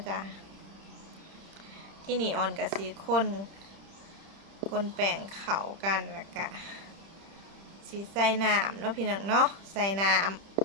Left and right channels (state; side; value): late; left; 30 ms